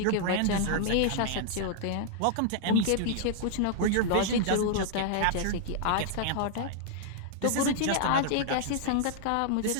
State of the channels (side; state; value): both; different; correlation -0.01